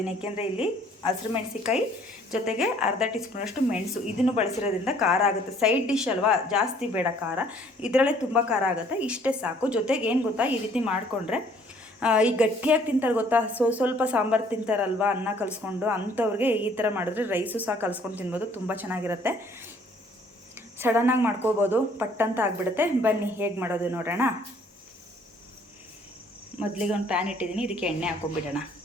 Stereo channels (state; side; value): normal; both; correlation 0.60